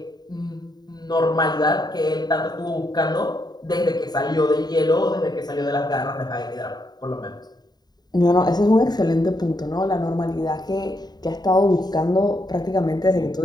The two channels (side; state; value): right; late; 0.20 ms